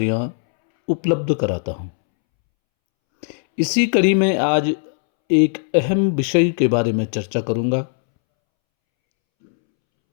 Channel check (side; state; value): right; silent; 67 dB below the other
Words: उपलब्ध कराता हूं। इसी कड़ी में आज एक अहम विषय के बारे में चर्चा करूंगा